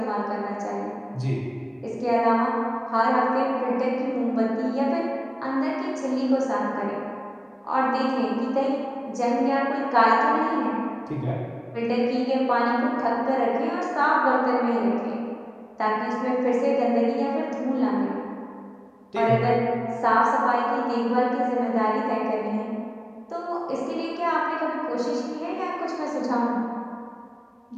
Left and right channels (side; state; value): both; identical; correlation 1.00